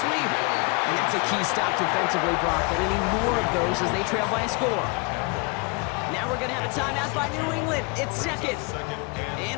sweep. And that's a key stop defensively, Brock. They're going to need more of those as they trail by a score. Now we're going to have a timeout by New England. It's second.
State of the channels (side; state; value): right; quieter; 30.7 dB